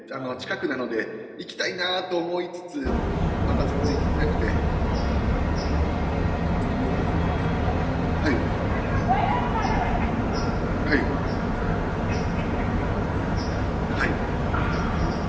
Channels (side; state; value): both; identical; correlation 1.00